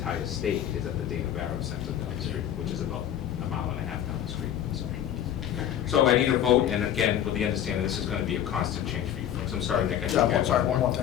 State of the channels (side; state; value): right; quieter; 10.5 dB